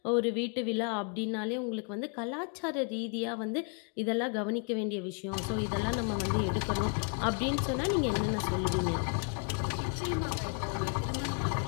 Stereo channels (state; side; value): quieter; right; 39.8 dB